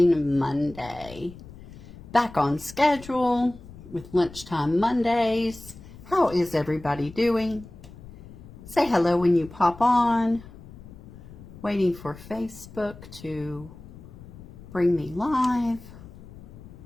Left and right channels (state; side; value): noise; left; rumble, 17 dB below the sound